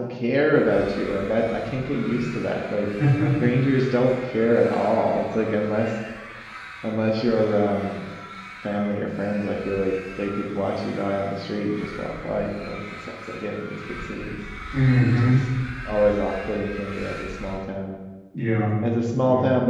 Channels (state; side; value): identical; both; correlation 1.00